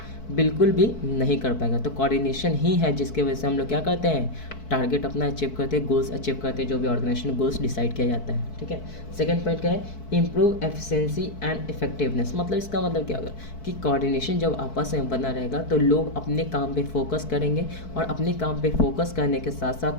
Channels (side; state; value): right; late; 4.6 ms